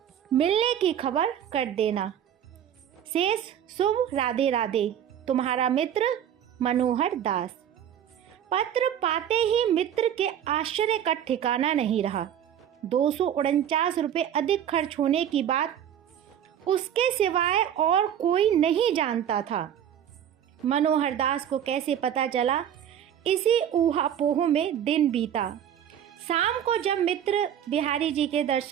मिलने की खबर कर देना। शेष शुभ, राधे राधे, तुम्हारा मित्र मनोहर दास। पत्र पाते ही मित्र के आश्चर्य का ठिकाना नहीं रहा। 249 रुपये अधिक खर्च होने की बात उसके सिवाय और कोई नहीं जानता था। मनोहर दास को कैसे पता चला, इसी ऊहापोह में दिन बीता। शाम को जब मित्र बिहारी जी के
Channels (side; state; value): left; quieter; 9.8 dB